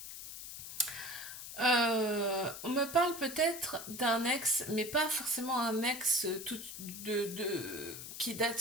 On me parle peut-être d'un ex, mais pas forcément un ex qui date,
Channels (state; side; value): noise; left; hiss, 10 dB below the sound